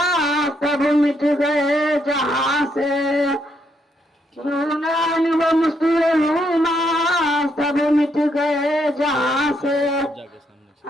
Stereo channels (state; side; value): normal; both; correlation 0.76